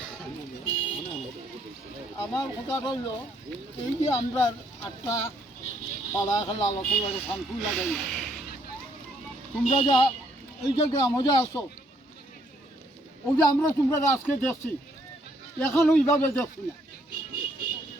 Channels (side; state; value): both; normal; correlation 0.69